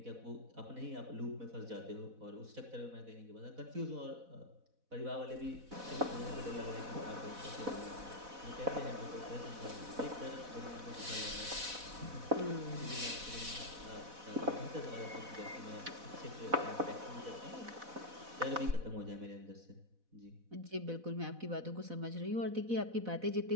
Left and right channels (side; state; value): left; late; 4.1 ms